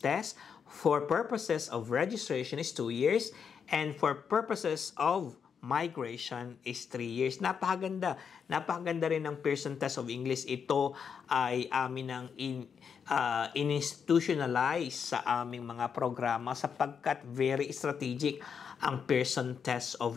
test for purposes of registration is 2 years and for purposes of migration is 3 years. Napakaganda. Napakaganda rin ng Pearson Test of English. Ito ay amin ang in-institutionalize sa aming mga programa sapagkat very strategic. ang Pearson Test of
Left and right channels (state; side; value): quieter; right; 6.8 dB